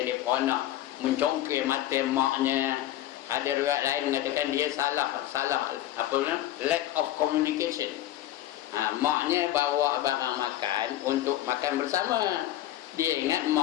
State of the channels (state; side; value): quieter; right; 13.5 dB